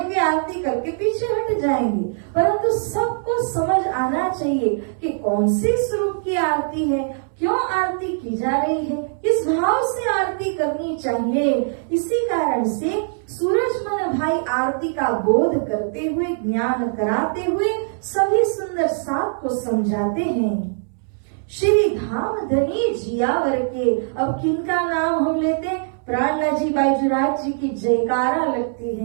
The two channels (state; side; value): silent; left; 64 dB below the other